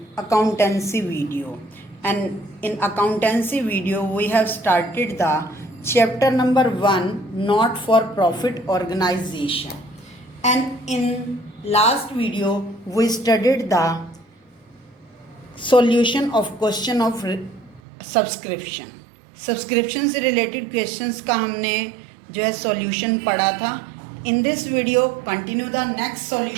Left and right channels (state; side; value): drops out; left; at 17.8 s